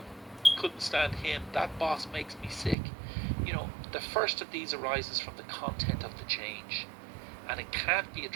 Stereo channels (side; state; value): left; drops out; at 2.8 s